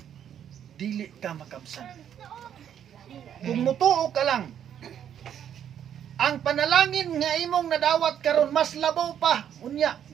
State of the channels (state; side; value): quieter; left; 9.4 dB